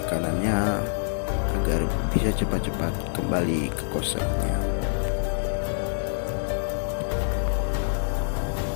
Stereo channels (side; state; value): right; silent; digital silence